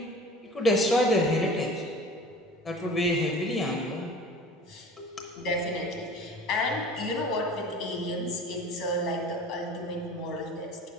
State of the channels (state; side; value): normal; both; correlation 0.41